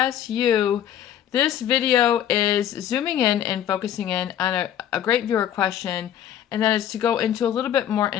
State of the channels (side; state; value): right; quieter; 10.4 dB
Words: you. This video is zooming in and focusing in on a great viewer question, and that is to go into a little bit more